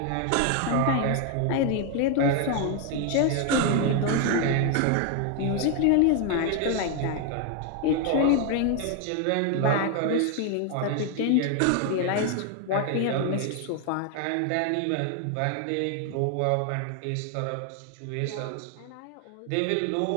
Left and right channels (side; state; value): both; different; correlation 0.01